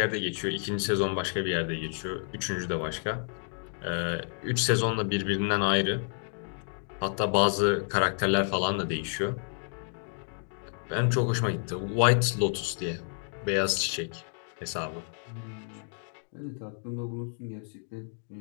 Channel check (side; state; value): right; silent; 58 dB below the other